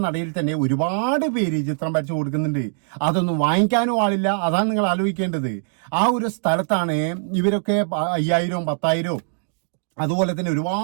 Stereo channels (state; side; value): silent; left; digital silence